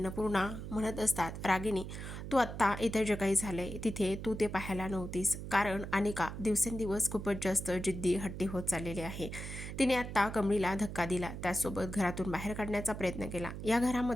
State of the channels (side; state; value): right; noise; hum, 8 dB below the sound